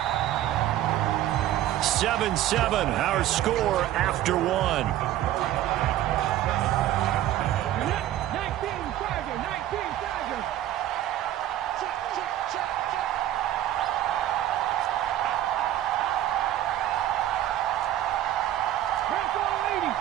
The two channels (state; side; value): quieter; left; 13.0 dB